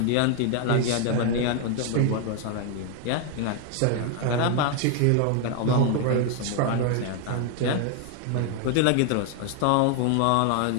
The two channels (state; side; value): different; both; correlation 0.00